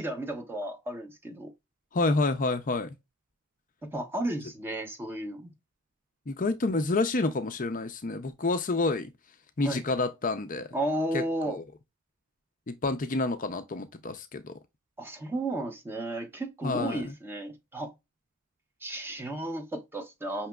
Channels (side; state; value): both; normal; correlation 0.42